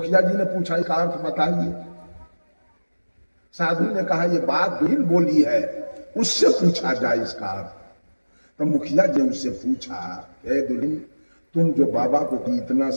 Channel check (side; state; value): both; inverted; correlation -1.00